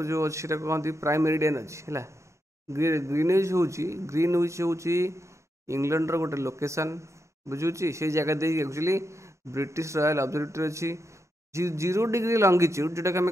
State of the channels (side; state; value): both; normal; correlation 0.85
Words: जो अच्छी कहते प्राइम मेरिडियन अच्छी है ग्रीनविच हूँ इंग्लैंड रो गोटे लोकेशन बुझुची से जगह they actually British royal observatory अच्छी 0 डिग्री लंगिट्यूड जोटा कि